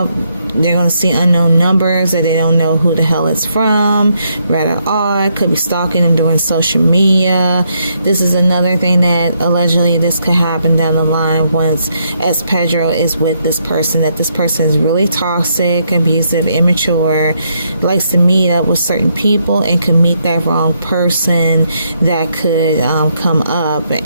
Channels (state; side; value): inverted; both; correlation -0.76